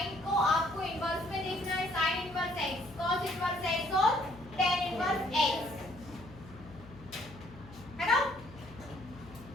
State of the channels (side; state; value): left; noise; hum, 18 dB below the sound